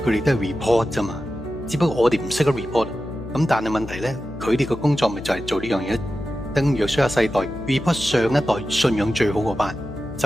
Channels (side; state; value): left; noise; hum, 12 dB below the sound